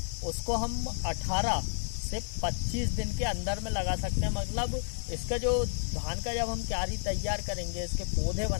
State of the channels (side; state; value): right; silent; digital silence